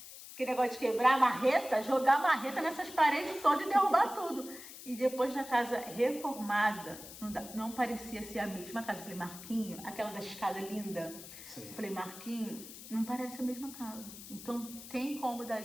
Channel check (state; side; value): noise; left; hiss, 14 dB below the sound